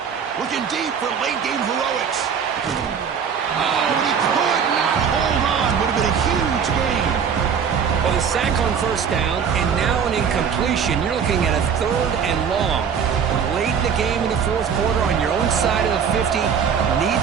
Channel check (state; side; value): quieter; left; 7.1 dB